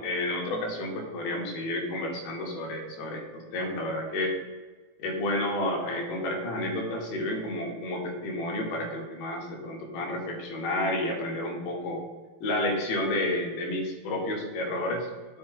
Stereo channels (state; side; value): late; right; 18 ms